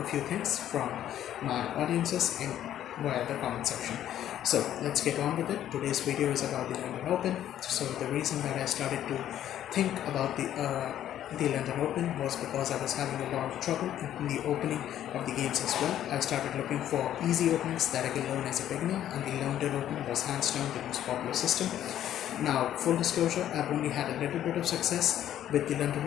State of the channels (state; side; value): quieter; right; 11.4 dB